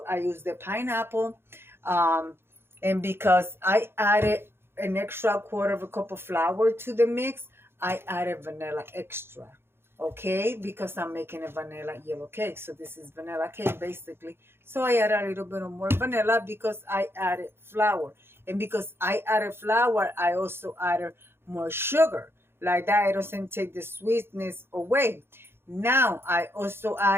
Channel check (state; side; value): late; left; 0.11 ms